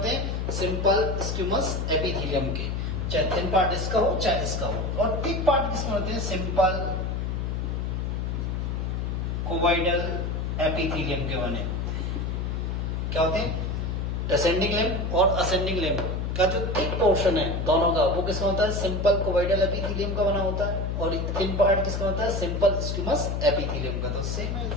हैं, सिंपल स्क्यूमस एपिथेलियम के। चाहे थिन पार्ट इसका हो चाहे इसका हो। और थिक पार्ट किसके होते हैं, सिंपल कोवाइडल एपिथेलियम के बने होते हैं। क्या होते हैं, डिसेंडिंग लिम्ब और असेंडिंग लिम्ब का जो थिक पोर्शन है दोनों का, वो किसका होता है, सिंपल कोवाइडल एपिथेलियम का बना होता है। और थिन पार्ट किसका होता है, सिंपल स्क्यूमस एपिथेलियम का। तो सेम है।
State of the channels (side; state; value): left; noise; hum, 1 dB below the sound